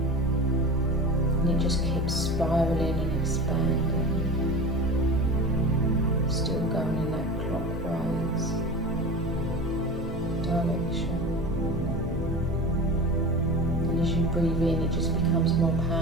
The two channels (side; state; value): both; normal; correlation 0.32